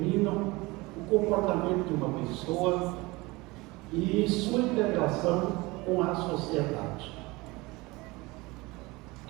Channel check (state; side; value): quieter; left; 22.8 dB